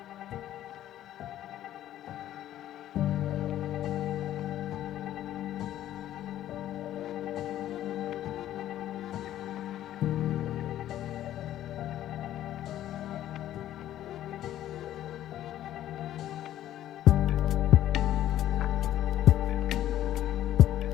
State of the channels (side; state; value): right; quieter; 12.6 dB